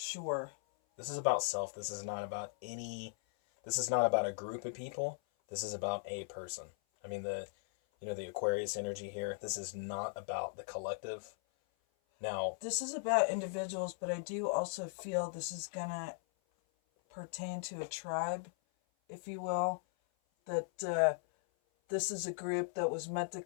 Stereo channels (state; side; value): silent; right; 52 dB below the other